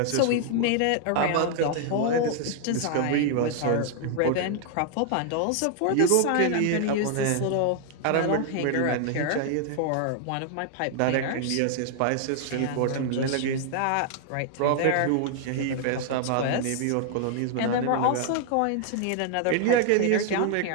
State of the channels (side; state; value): both; different; correlation 0.00